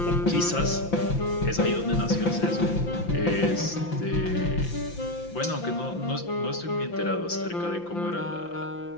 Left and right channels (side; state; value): right; late; 5.8 ms